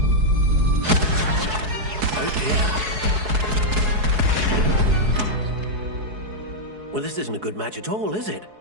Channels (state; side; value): late; left; 4.7 ms